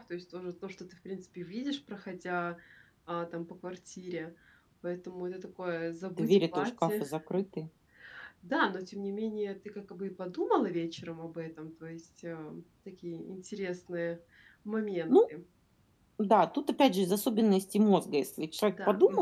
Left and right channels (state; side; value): identical; both; correlation 1.00